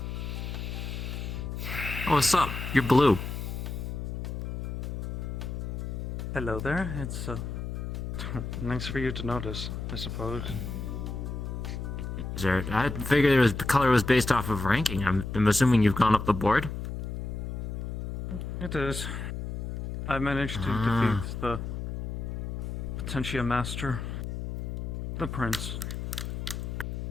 Oh, what's up? You're blue. Hello there. It's nice for you to notice, I suppose. Is there? I figured the color was based off of ranking. I'm assuming you've gone up the board. It is. I managed to defeat the Potentia Master, the Prince.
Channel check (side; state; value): left; noise; hum, 5 dB below the sound